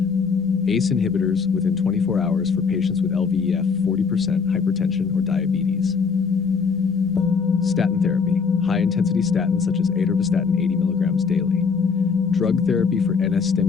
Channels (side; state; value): right; quieter; 5.5 dB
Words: ACE inhibitors within 24 hours for patients with LVEF 40%, hypertension, or diabetes. Statin therapy, high-intensity statins such as atorvastatin 80 milligrams daily. Drug therapy for